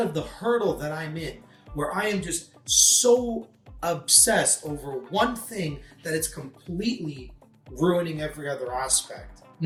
of the hurdle that I'm in, where I am just so obsessed over one thing that it's completely ruining every other aspect?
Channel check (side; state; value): both; identical; correlation 1.00